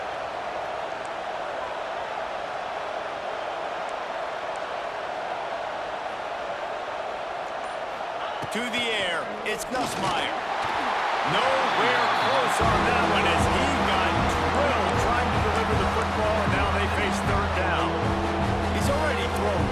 To the air, it's Nussmeier. Nowhere close on that one as he got drilled trying to deliver the football, and now they face third down. He's already thrown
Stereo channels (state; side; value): identical; both; correlation 1.00